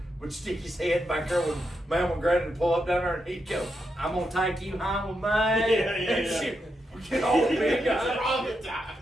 would stick his head back there when Mom and Granny would pull up down there, and he'd go, I'm gonna take you home with me. And she would get all big eyes.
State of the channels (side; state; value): both; normal; correlation 0.84